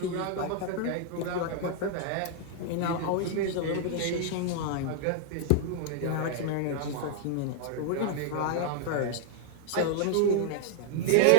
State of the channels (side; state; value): both; different; correlation -0.01